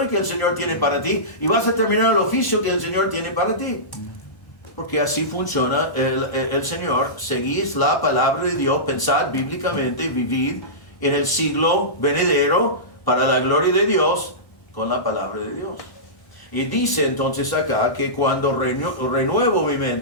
que el Señor tiene para ti y vas a terminar el oficio que el Señor tiene para ti. Porque así funciona el Señor. Seguís la palabra de Dios, pensad bíblicamente, vivid en el siglo venidero para la gloria de Dios con la palabra de Dios. Y dice entonces acá que cuando renuevo mi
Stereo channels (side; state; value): right; late; 1.1 ms